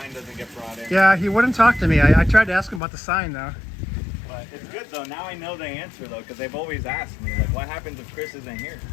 doesn't get brought in. Yeah, he wouldn't talk to me. I tried to ask him about the sign though. But it's good though. Now I know the answer though, because they've always asked me, like, what happens if Chris isn't here?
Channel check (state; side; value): drops out; right; at 2.8 s